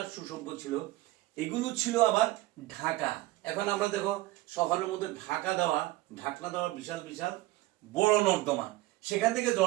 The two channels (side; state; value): left; quieter; 17.9 dB